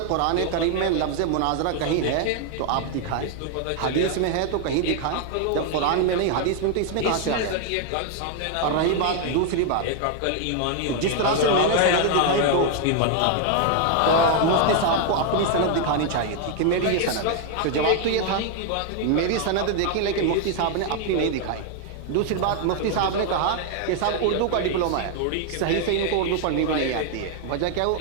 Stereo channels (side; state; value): both; different; correlation 0.00